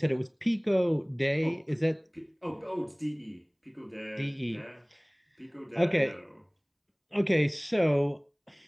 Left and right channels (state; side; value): identical; both; correlation 1.00